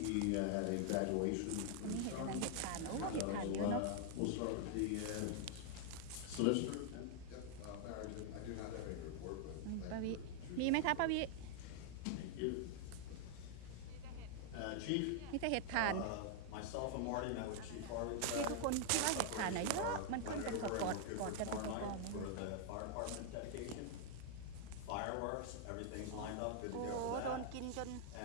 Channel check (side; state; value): both; different; correlation 0.00